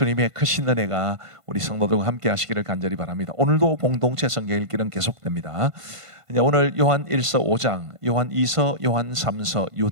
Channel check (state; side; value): late; left; 1.5 ms